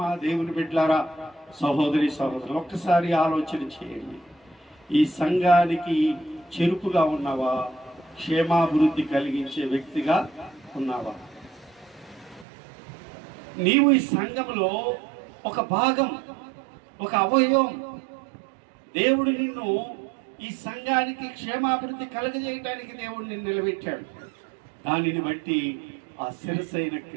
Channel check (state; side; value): drops out; left; at 12.5 s